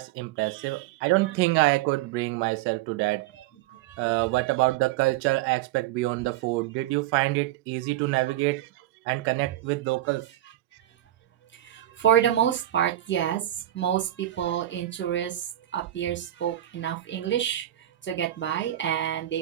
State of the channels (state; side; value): quieter; left; 13.9 dB